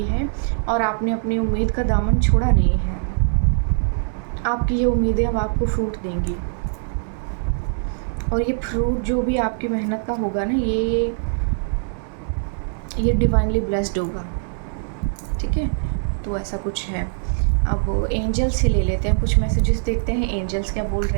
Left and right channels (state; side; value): silent; left; digital silence